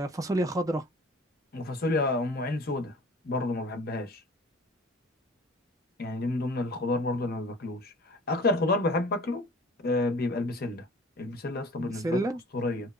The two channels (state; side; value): normal; both; correlation 0.46